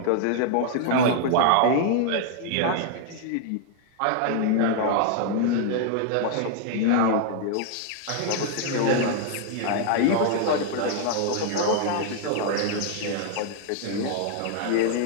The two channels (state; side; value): different; both; correlation 0.00